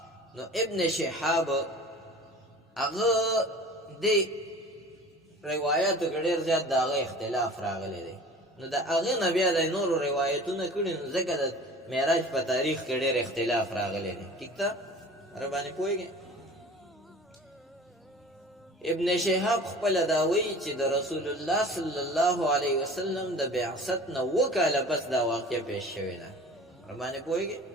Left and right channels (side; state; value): both; normal; correlation 0.42